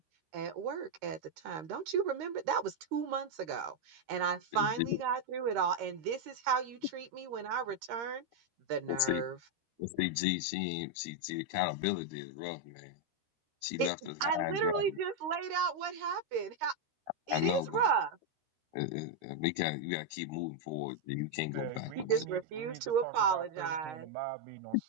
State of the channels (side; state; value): left; late; 13 ms